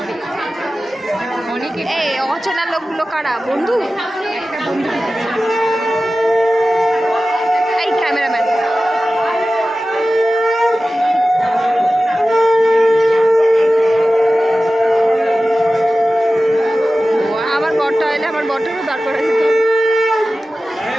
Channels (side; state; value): both; normal; correlation 0.95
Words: এই অচেনা লোকগুলো কারা? বন্ধু? এই ক্যামেরাম্যান আমার বরটা এলে আমার বরটারও দাঁড় করা যেত।